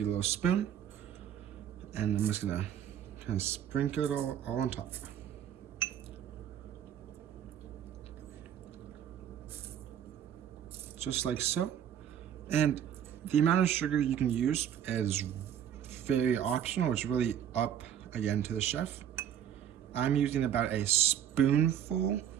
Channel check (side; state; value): left; quieter; 9.6 dB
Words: a little spoon, and I'm just gonna kind of sprinkle it all on top. Just like so. And the amount of sugar you can use is very optional. It's really up, again, to the chef. I'm using about a spoonful